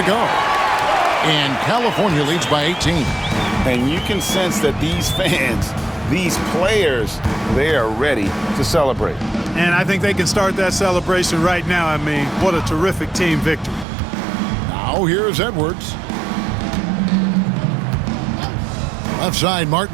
go. And California leads by 18. And you can sense that these fans, these players, they are ready to celebrate. And I think they can start that celebration right now. I mean, what a terrific team victory. Now here's Edwards. Left side,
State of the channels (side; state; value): left; drops out; at 13.9 s